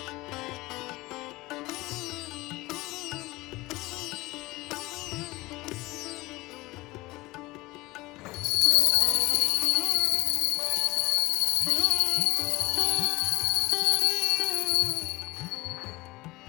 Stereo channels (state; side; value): quieter; right; 20.5 dB